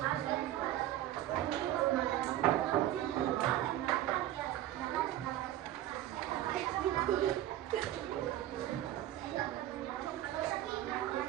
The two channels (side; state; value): left; quieter; 13.2 dB